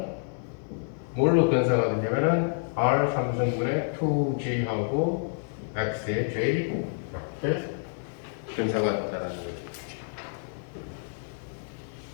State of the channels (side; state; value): right; silent; 59 dB below the other